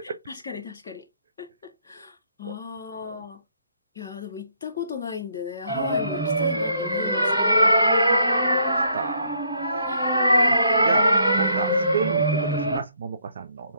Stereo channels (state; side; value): inverted; both; correlation -0.69